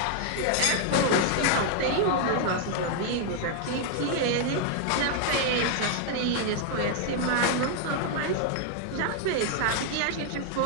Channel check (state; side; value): different; both; correlation 0.00